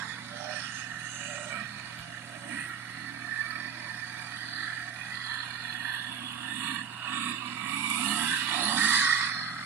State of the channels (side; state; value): left; quieter; 7.2 dB